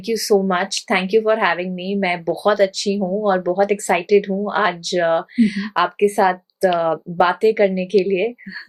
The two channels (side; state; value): both; identical; correlation 1.00